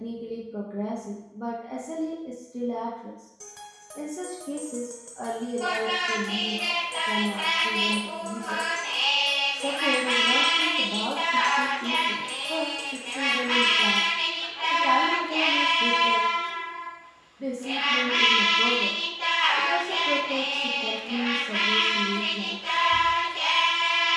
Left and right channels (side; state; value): both; identical; correlation 1.00